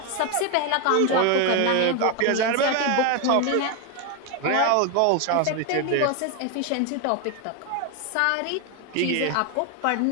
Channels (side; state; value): both; different; correlation 0.01